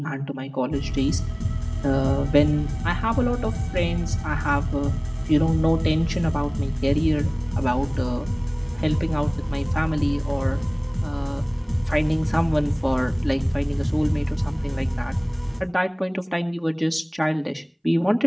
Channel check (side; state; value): both; identical; correlation 1.00